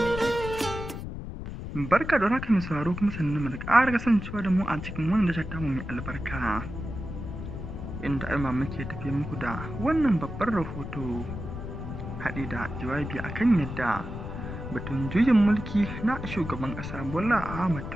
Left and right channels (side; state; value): left; noise; rumble, 8 dB below the sound